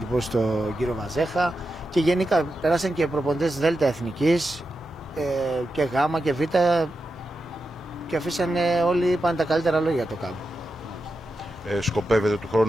στον κύριο Βαζέχα, και γενικά περάσαν και προπονητές Δ' Εθνικής και Γ' και Β' και αφήσανε όλοι, είπαν τα καλύτερα λόγια το κάμπ. Σκοπεύετε του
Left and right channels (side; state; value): both; normal; correlation 0.89